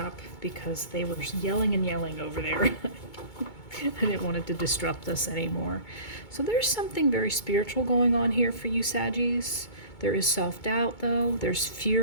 because they were yelling and yelling over there. I didn't want it to disrupt us anymore. So there's something very spiritual going on here for you, Saggies. There is self-doubt, though. There's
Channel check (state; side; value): late; right; 2.2 ms